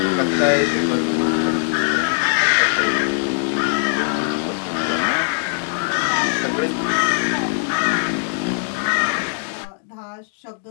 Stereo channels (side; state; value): right; silent; digital silence